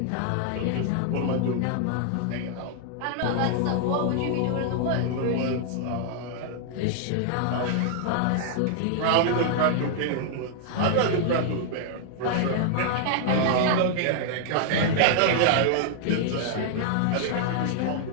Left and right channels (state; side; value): different; both; correlation -0.01